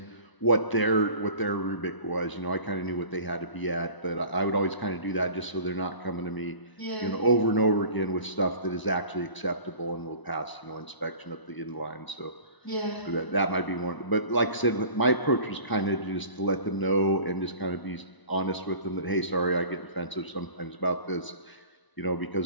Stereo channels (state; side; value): late; right; 1.0 ms